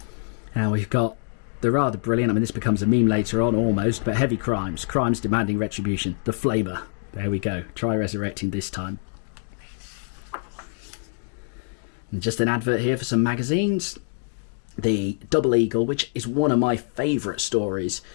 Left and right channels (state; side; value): silent; right; digital silence